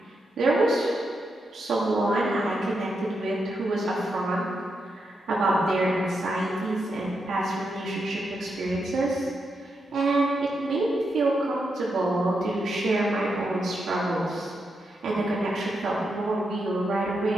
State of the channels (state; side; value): normal; both; correlation 0.84